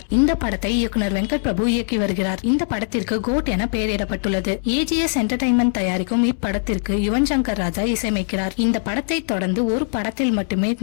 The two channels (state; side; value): silent; right; 65 dB below the other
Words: இந்த படத்தை இயக்குனர் வெங்கட் பிரபு இயக்கி வருகிறார். இந்த படத்திற்கு கோட் என பெயரிடப்பட்டுள்ளது. AGS என்டர்டைன்மெண்ட் தயாரிக்கும் இப்படத்திற்கு யுவன் சங்கர் ராஜா இசையமைக்கிறார். இந்த படத்தை தொடர்ந்து ஒரு படத்தில் மட்டுமே